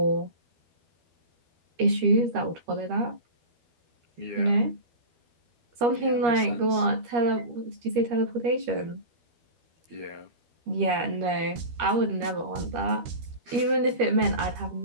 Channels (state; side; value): late; left; 13 ms